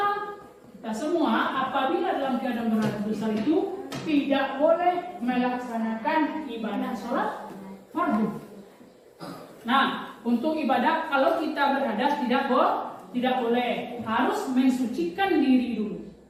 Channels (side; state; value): both; identical; correlation 1.00